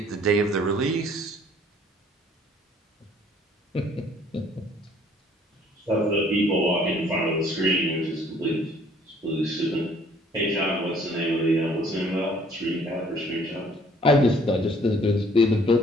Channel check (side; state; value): both; normal; correlation 0.59